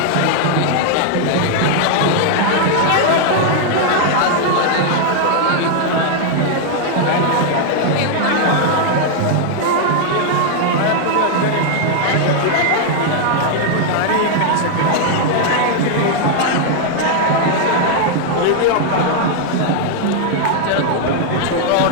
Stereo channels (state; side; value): different; both; correlation 0.00